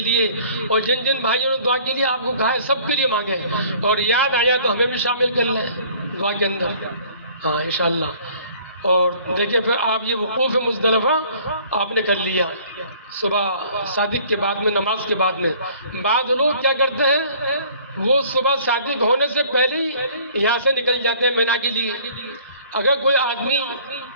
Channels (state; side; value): inverted; both; correlation -0.53